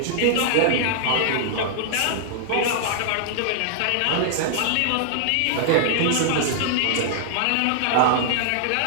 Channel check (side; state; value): both; different; correlation -0.01